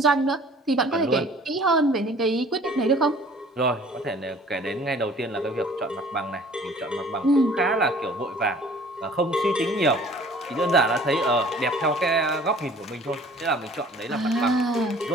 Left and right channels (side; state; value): both; normal; correlation 0.51